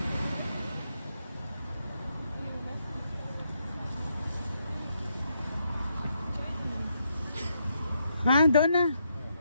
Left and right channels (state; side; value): inverted; both; correlation -0.79